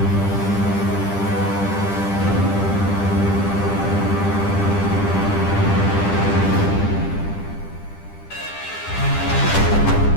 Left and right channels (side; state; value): right; late; 10 ms